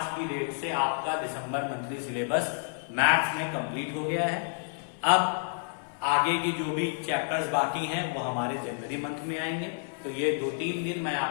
की डेट से आपका दिसंबर मंथली सिलेबस मैथ्स में कंप्लीट हो गया है। अब आगे की जो भी चैप्टर्स बाकी हैं वो हमारे जनवरी मंथ में आएंगे। तो ये 2-3 दिन मैं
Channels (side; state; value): right; silent; 56 dB below the other